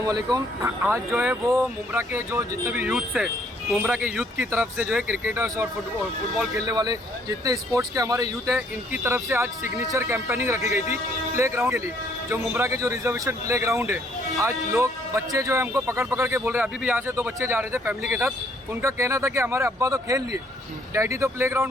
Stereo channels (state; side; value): normal; both; correlation 0.65